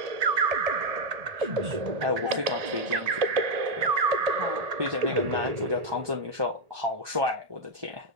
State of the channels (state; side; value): late; left; 1.7 ms